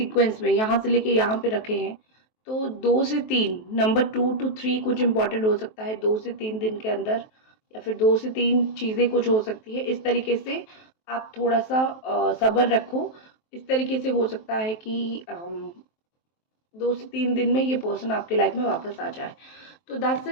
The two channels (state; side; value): late; right; 23 ms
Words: में यहाँ से लेके यहाँ पे रखे हैं। तो 2 से 3, नंबर 2 to 3 कुछ इंपॉर्टेंट हो सकता है 2 से 3 दिन के अंदर, या फिर 2 से 3 चीज़ें कुछ हो सकती है। इस तरीके से आप थोड़ा सा सब्र रखो। इस तरीके से हो सकता है कि 2 से 3 दिन में ये पर्सन आपके लाइफ में वापस आ जाए। तो दैट्स